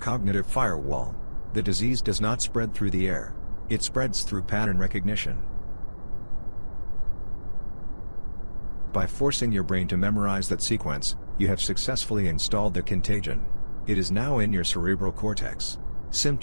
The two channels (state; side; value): inverted; both; correlation -1.00